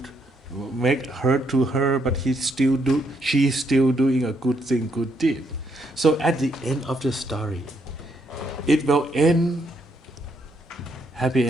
make hurt to her, but she's still doing a good thing, good deed. So at the end of the story, it will end happy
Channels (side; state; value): both; normal; correlation 0.75